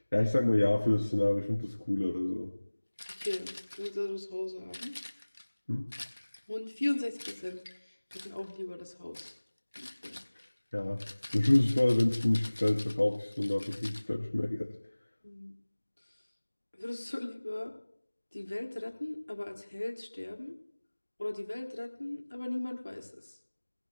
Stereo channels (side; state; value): both; inverted; correlation -1.00